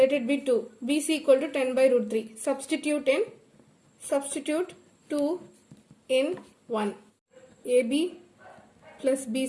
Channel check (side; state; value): both; identical; correlation 1.00